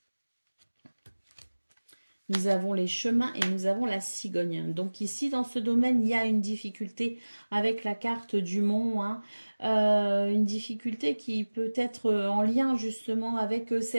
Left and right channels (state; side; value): inverted; both; correlation -1.00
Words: nous avons les chemins et nous avons la cigogne. Donc ici, dans ce domaine, il y a une difficulté avec la carte du mont. Une difficulté qui peut être en lien justement avec